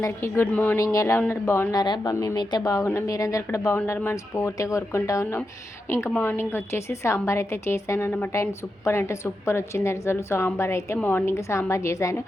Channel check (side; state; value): both; normal; correlation 0.88